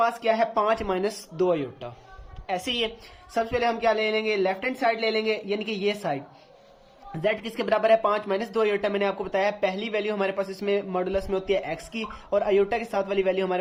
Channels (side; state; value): both; identical; correlation 1.00